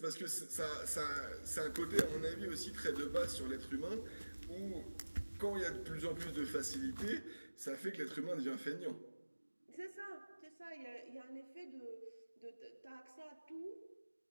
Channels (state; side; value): inverted; both; correlation -1.00